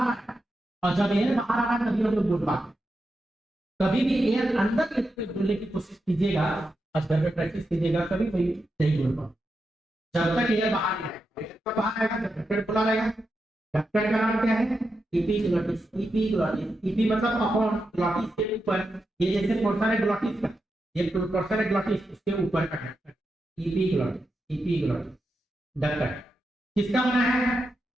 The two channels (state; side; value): normal; both; correlation 0.87